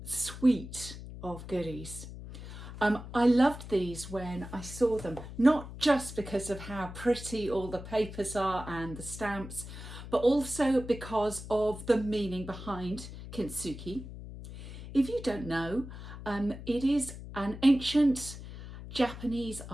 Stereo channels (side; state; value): left; noise; hum, 12 dB below the sound